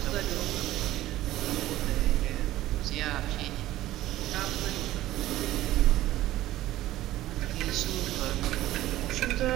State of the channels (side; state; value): left; quieter; 15.1 dB